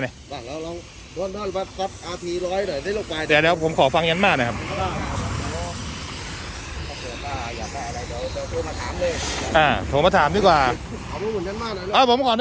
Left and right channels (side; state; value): both; identical; correlation 1.00